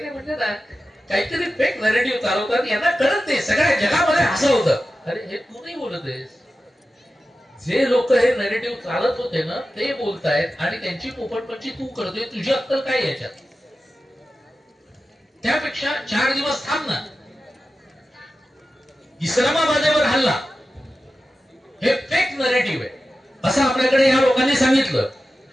म्हणजे ना काहीतरी फेक नॅरेटिव्ह चालवतात, यांना कळत नाही, सगळ्या जगामध्ये हसवतं. अरे हे तू नाही बोलत आहेस, जे लोक हे नॅरेटिव्ह चालत होते ना ते बोलतायत आणि त्यांची पोपटपंची तू करतोय. तुझी अक्कल काय याच्यात? त्यापेक्षा 4 दिवस थांब ना. इस्लामाबादेवर हल्ला हे फेक नॅरेटिव्ह आहे असं आपल्याकडे या लोकांनी सांगितलं.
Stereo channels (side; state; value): both; normal; correlation 0.93